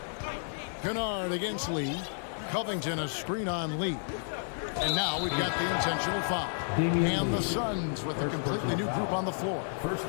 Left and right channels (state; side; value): silent; right; 57 dB below the other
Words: Kennard against Lee. Covington a screen-on lead. And now we've got the intentional foul. And the Suns with a completely new group on the floor. First